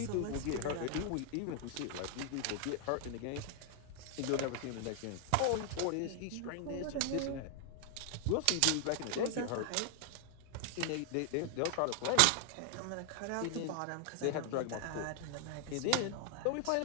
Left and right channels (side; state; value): both; different; correlation 0.00